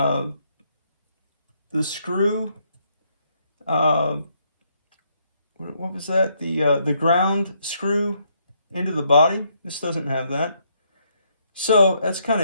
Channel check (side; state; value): both; inverted; correlation -0.73